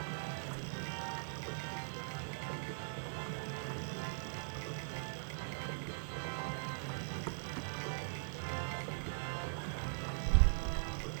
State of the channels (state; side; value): silent; left; 51 dB below the other